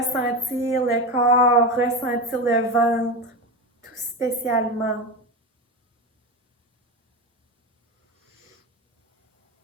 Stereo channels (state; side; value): normal; both; correlation 0.20